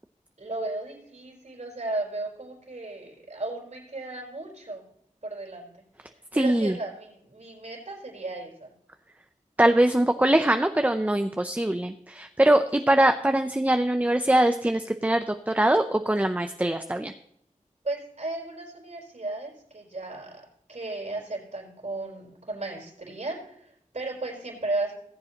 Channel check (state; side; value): normal; both; correlation 0.87